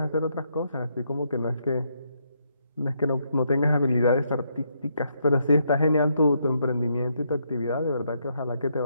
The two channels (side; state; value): both; inverted; correlation -0.76